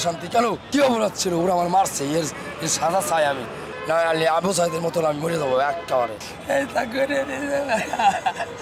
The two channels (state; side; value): identical; both; correlation 1.00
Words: কেন কি অপরাধ ছিল? ওরা আমার মারছে, এর সাজা চাই আমি, না আলি আবু সাইদের মতন আমি মরে যাবো একেবারে।